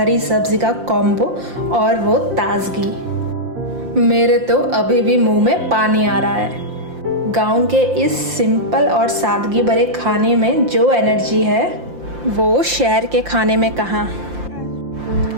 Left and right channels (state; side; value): late; left; 5.7 ms